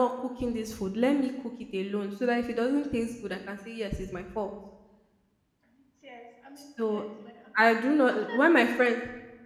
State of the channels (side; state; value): both; identical; correlation 1.00